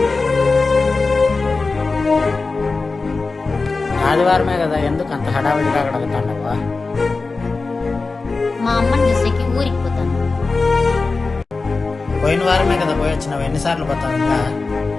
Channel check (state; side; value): quieter; right; 3.9 dB